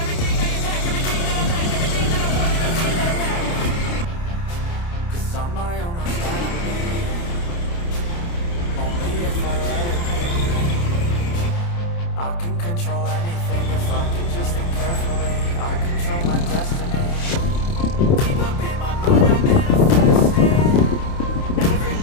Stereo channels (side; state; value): right; late; 29 ms